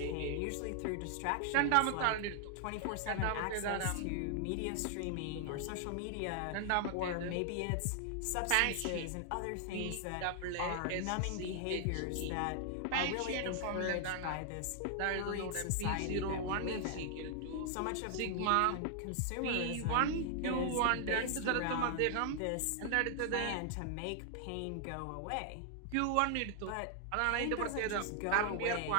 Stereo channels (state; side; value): different; both; correlation 0.00